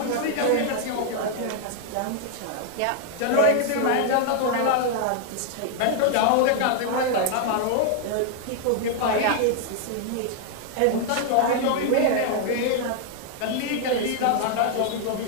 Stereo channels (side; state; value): both; different; correlation 0.00